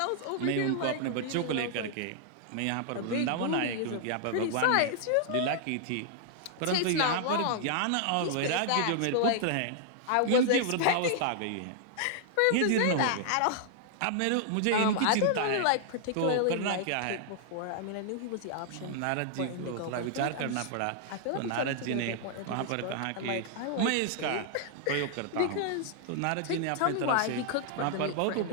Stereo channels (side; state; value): both; different; correlation -0.01